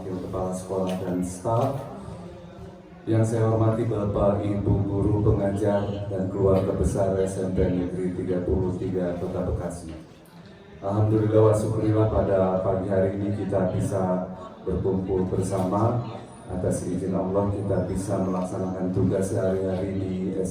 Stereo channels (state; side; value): identical; both; correlation 1.00